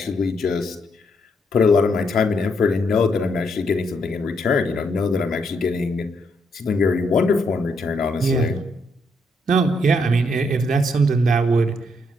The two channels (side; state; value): both; normal; correlation 0.75